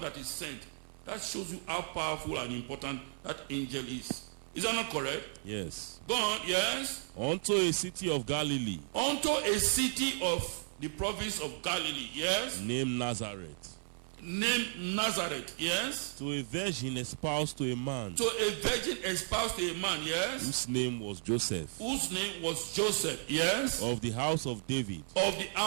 that is sent. That shows you how powerful and important that angel is. Is that not correct? Yes. Go on, yes. Unto a city of Galilee. Unto a city of the province of Galilee, yes. Named Nazareth. Named Nazareth, yes. To a virgin espoused to a man. To a virgin espoused to a man, yes. Whose name was Joseph. Whose name was Joseph, yes. Of the house of David. Of the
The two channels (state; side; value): silent; left; 55 dB below the other